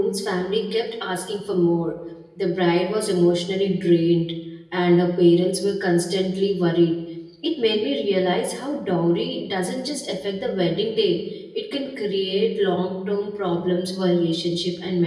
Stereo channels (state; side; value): identical; both; correlation 1.00